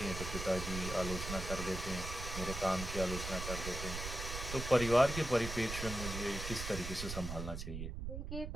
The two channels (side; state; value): right; noise; rumble, 6 dB below the sound